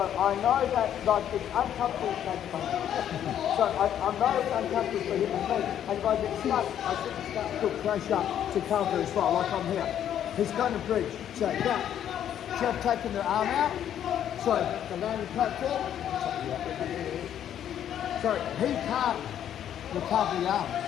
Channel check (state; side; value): quieter; right; 10.2 dB